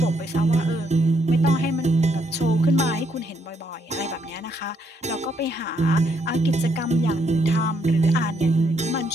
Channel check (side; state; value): both; normal; correlation 0.74